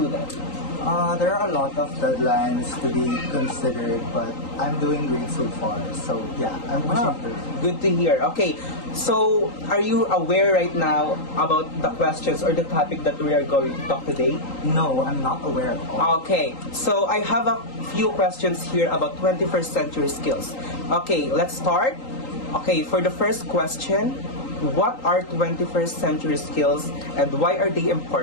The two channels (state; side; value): late; right; 3.8 ms